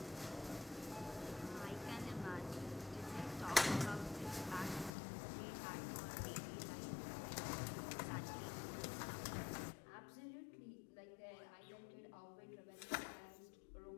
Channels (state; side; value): drops out; right; at 4.9 s